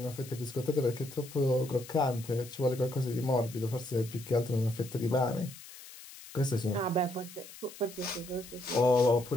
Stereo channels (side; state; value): left; noise; hiss, 16 dB below the sound